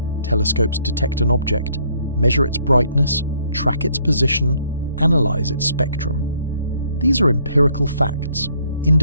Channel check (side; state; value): both; inverted; correlation -0.66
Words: Telescopes detect an object, measure its brightness, track its position, analyze its spectrum. These are empirical facts,